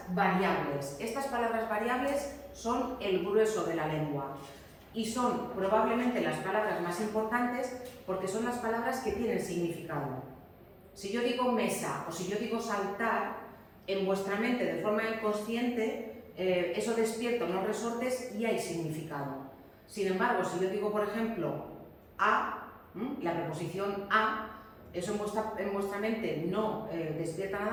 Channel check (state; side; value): identical; both; correlation 1.00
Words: variables. Estas palabras variables son el grueso de la lengua y son probablemente las palabras más importantes porque son las palabras que tienen significado. Si yo digo mesa o si yo digo saltar, en vuestra mente de forma inconsciente eso despierta unos resortes y hay significado. Sin embargo, si yo digo por ejemplo a, la preposición a, eso en vuestra mente no despierta